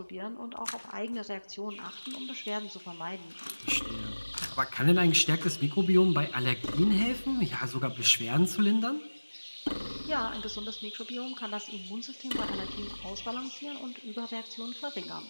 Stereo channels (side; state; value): both; inverted; correlation -1.00